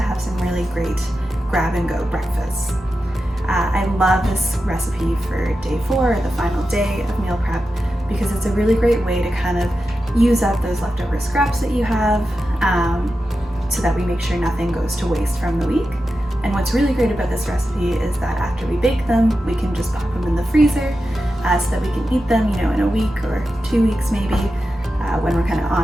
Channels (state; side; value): normal; both; correlation 0.91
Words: have some really great grab-and-go breakfasts. I love this recipe for day 4, the final day of meal prep, because it's a really great way to kind of use up those leftover scraps that you have so that we make sure nothing goes to waste from the week. And what's really great about this recipe is that after we bake them, we can just pop them in the freezer so that we can eat them, in a week or 2 weeks maybe, when we're kind of